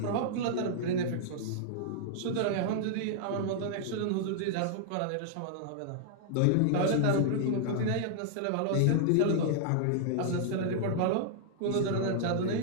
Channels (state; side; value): different; both; correlation -0.01